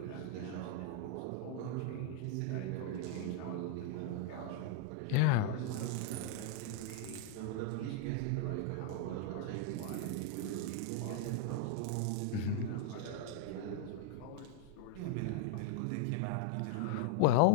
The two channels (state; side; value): different; both; correlation -0.01